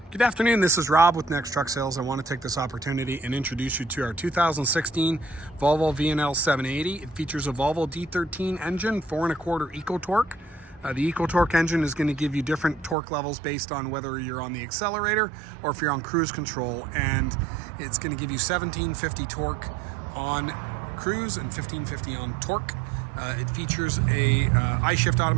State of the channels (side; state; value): left; drops out; at 13.0 s